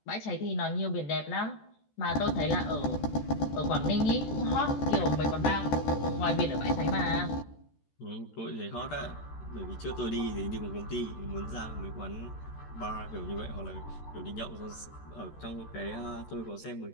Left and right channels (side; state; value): right; late; 14 ms